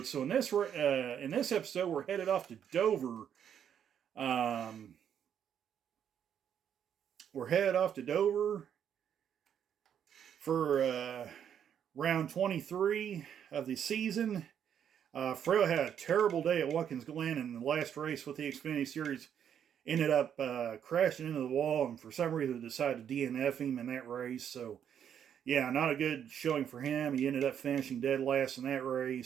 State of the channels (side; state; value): left; quieter; 8.8 dB